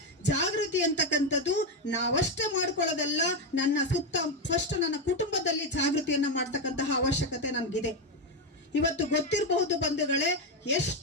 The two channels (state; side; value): normal; both; correlation 0.08